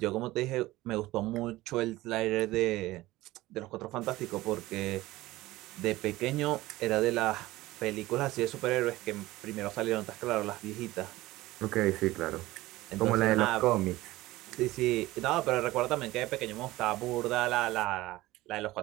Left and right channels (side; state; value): left; quieter; 18.1 dB